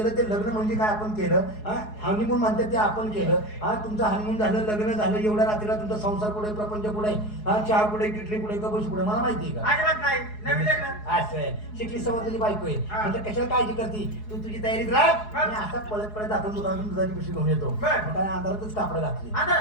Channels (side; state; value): right; late; 4.7 ms